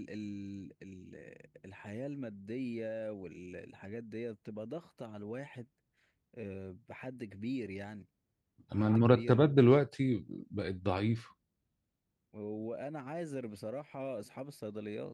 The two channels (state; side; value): identical; both; correlation 1.00